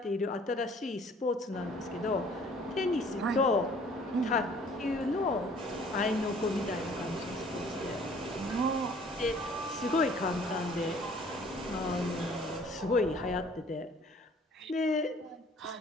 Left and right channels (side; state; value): both; normal; correlation 0.55